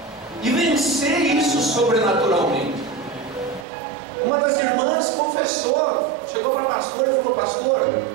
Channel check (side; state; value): left; drops out; at 3.7 s